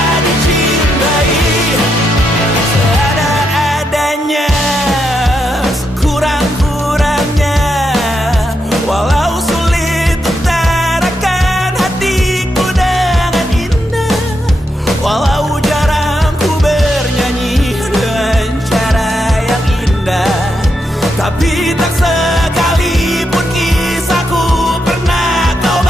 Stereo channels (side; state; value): both; normal; correlation 0.82